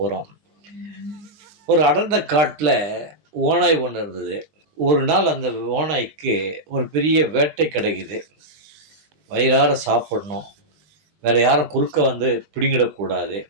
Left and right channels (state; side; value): late; left; 20 ms